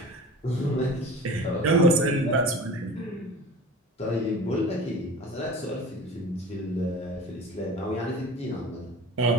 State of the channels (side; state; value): both; normal; correlation 0.38